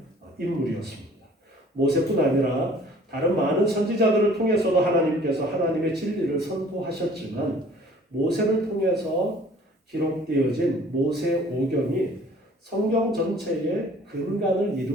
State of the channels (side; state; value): both; normal; correlation 0.52